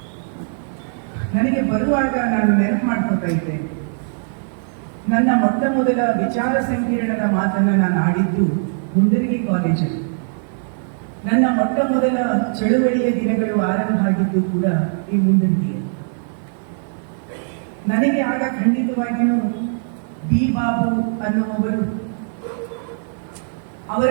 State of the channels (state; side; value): silent; left; 55 dB below the other